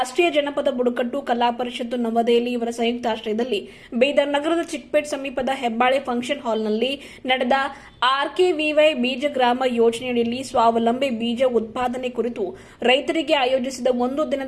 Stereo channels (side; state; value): both; identical; correlation 1.00